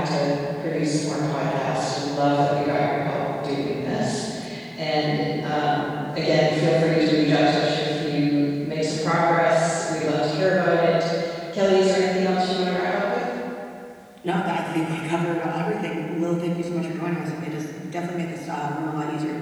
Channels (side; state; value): both; identical; correlation 1.00